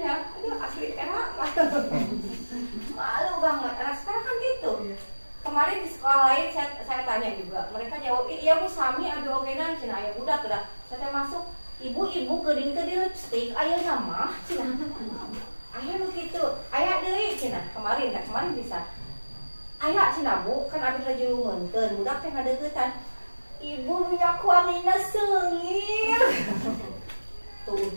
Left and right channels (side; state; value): both; inverted; correlation -1.00